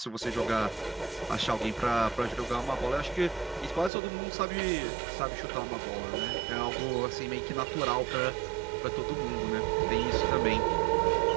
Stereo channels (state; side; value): drops out; left; at 3.9 s